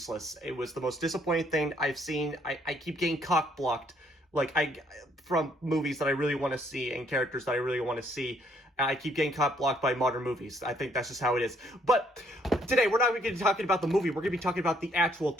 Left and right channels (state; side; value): normal; both; correlation 0.67